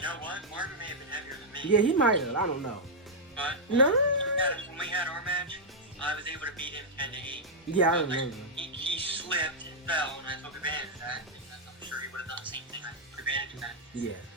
know what? Marvin may have been heavier than me. Yeah, he might have. I don't know. But no. When we had our match, I was able to beat him 10-8. Yeah, I remember. He slipped and fell, and I took advantage of that. Because I'm sure he would have done the same thing. I took advantage of that. Yeah.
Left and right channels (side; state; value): both; normal; correlation -0.05